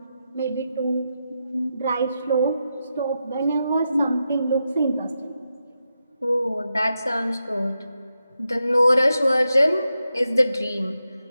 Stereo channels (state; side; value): inverted; both; correlation -0.87